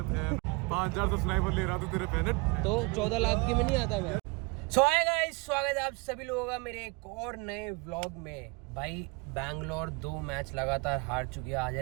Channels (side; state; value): left; quieter; 28.0 dB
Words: फैन 5000 सब्सक्राइबर ले रहा तू, तेरे फैन है तो 14 लाख के में नहीं आता मैं। सो हाय गाइस, स्वागत है आप सभी लोगों का मेरे एक और नए व्लॉग में। भाई बैंगलोर 2 मैच लगातार हार चुकी है, आज